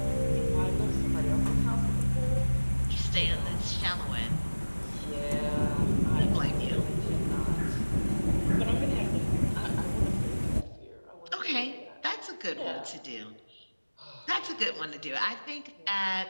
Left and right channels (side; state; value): both; inverted; correlation -1.00